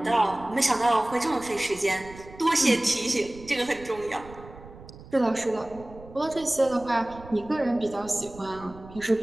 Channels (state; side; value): noise; right; rumble, 18 dB below the sound